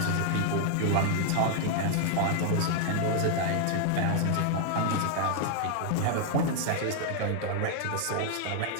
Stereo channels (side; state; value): both; different; correlation 0.00